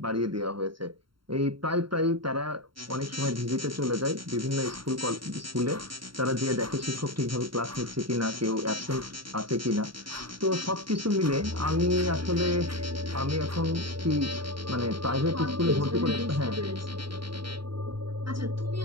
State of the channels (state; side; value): late; left; 0.73 ms